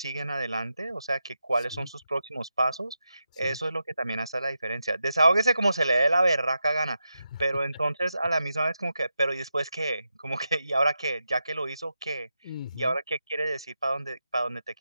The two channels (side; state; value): both; inverted; correlation -0.88